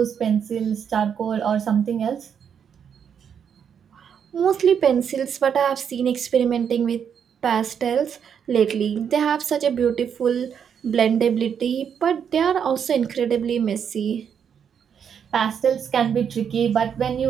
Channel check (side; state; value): left; quieter; 7.7 dB